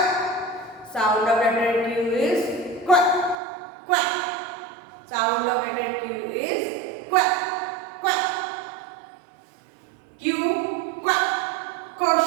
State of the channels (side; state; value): left; drops out; at 3.4 s